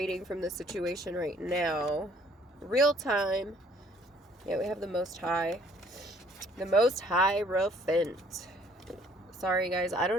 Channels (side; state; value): both; normal; correlation 0.60